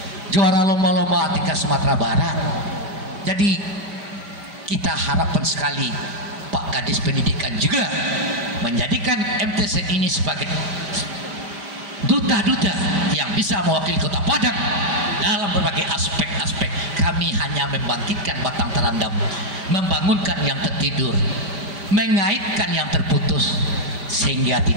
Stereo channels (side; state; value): left; late; 5.1 ms